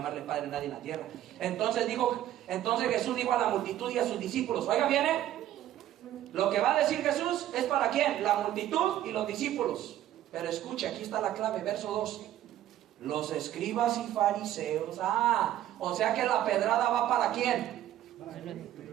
padre a nadie en la tierra. Entonces Jesús dijo a la multitud y a sus discípulos, oiga, viene. Lo que va a decir Jesús es para quién, la multitud y los discípulos. Pero escuche, aquí está la clave, verso 2. Los escribas y fariseos. O sea que la pedrada va para quién.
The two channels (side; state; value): left; quieter; 12.6 dB